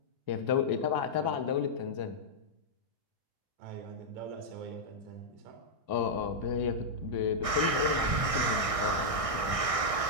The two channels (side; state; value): left; late; 1.6 ms